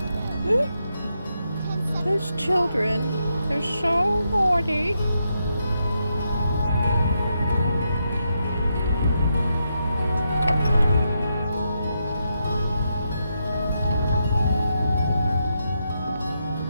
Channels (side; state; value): both; inverted; correlation -0.82